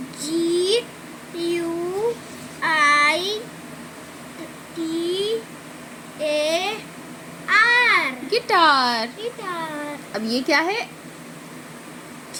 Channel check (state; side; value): identical; both; correlation 1.00